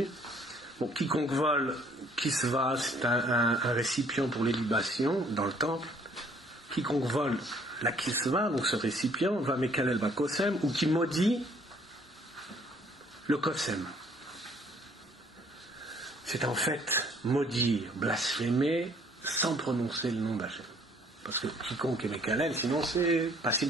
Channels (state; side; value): normal; both; correlation 0.60